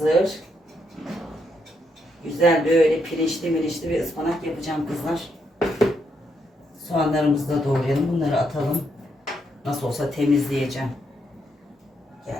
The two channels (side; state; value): both; normal; correlation 0.78